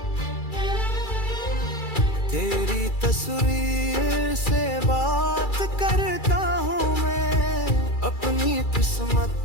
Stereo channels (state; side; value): late; right; 2.3 ms